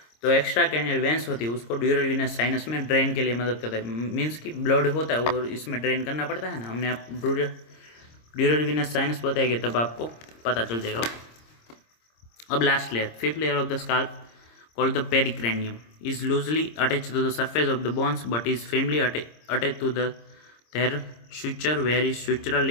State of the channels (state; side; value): late; right; 26 ms